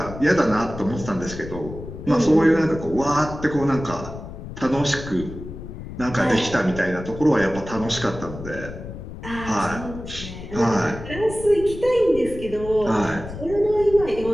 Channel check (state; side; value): noise; left; rumble, 11 dB below the sound